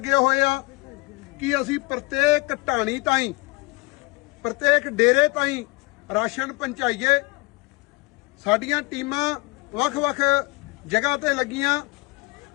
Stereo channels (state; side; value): quieter; right; 24.0 dB